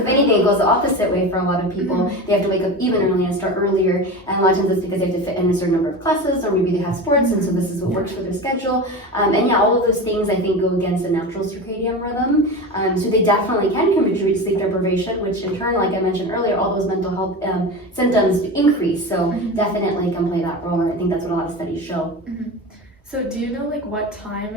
if anything, it goes the opposite way for a lot of people. They have to wake up even early and start earlier, and a lot of times it's because they have to fit in a certain number of classes, or maybe they have sports, and so this is what works for their schedule. And yeah, all of those things I think go against the natural circadian rhythm. So they definitely can contribute to sleep deprivation, which in turn, like I mentioned earlier, all those mental health symptoms increase. So definitely can play that role, and I think that's what a lot of studies show. So do you know like what time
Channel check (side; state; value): both; normal; correlation 0.27